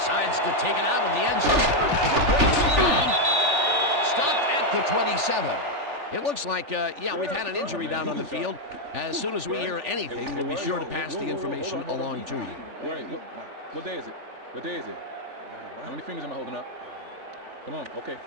to take it out of the end zone. Stopped at the 27. It looks like, yeah, we've had an injury down on the field. As soon as we hear anything, we'll be sure to pass the information along to you. Wait, what day is it? What day is it? How many fingers am I holding up? Come on, okay.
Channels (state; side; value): late; left; 3.4 ms